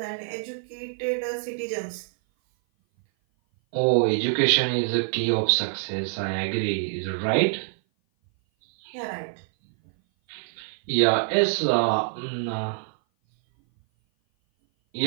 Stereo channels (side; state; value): left; silent; 57 dB below the other